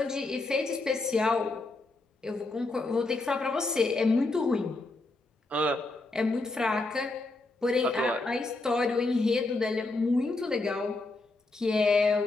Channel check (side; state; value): right; quieter; 3.1 dB